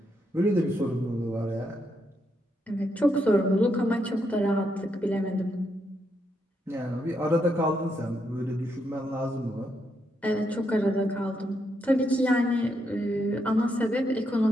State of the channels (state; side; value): normal; both; correlation 0.79